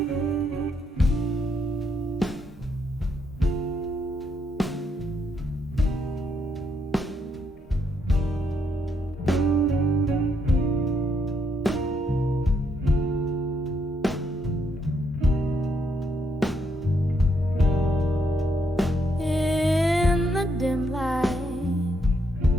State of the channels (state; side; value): normal; both; correlation 0.75